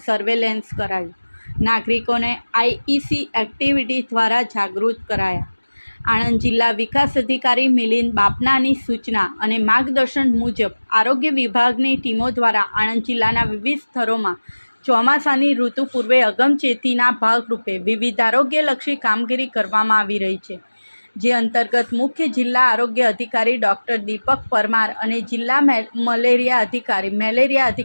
સર્વેલન્સ કરાયું। નાગરિકોને આઈઈસી એક્ટિવિટી દ્વારા જાગૃત કરાયા। આણંદ જિલ્લા વિકાસ અધિકારી મિલિંદ બાપનાની સૂચના અને માર્ગદર્શન મુજબ આરોગ્ય વિભાગની ટીમો દ્વારા આણંદ જિલ્લાના વિવિધ સ્થળોમાં ચોમાસાની ઋતુ પૂર્વે અગમચેતીના ભાગરૂપે વિવિધ આરોગ્યલક્ષી કામગીરી કરવામાં આવી રહી છે, જે અંતર્ગત મુખ્ય જિલ્લા આરોગ્ય અધિકારી ડૉક્ટર દીપક પરમાર અને જિલ્લા મેલેરિયા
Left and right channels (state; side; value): inverted; both; correlation -1.00